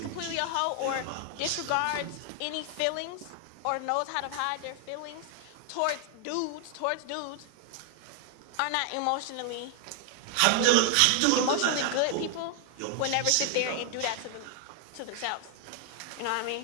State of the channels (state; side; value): different; both; correlation 0.00